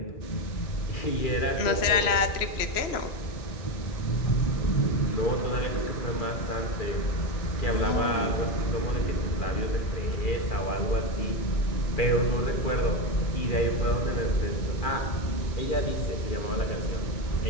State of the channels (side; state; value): right; late; 3.0 ms